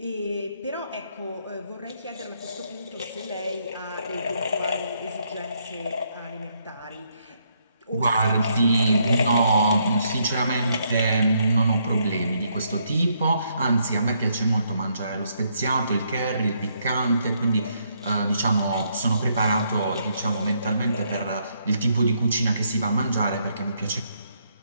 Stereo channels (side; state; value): both; inverted; correlation -0.74